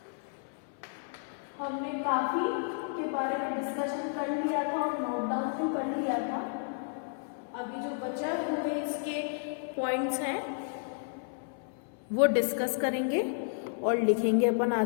हमने काफी के बारे में डिस्कशन कर लिया था और नोट डाउन भी कर लिया था। अभी जो बचा हुए इसके पॉइंट्स हैं वो डिस्कस करेंगे और लिखेंगे अपन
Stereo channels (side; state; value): right; silent; 56 dB below the other